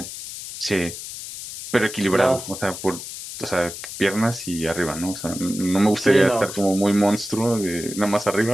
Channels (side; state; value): left; noise; hiss, 10 dB below the sound